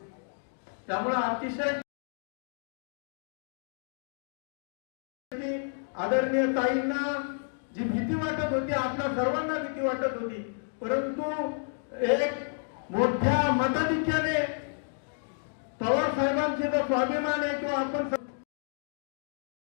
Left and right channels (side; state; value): right; silent; 57 dB below the other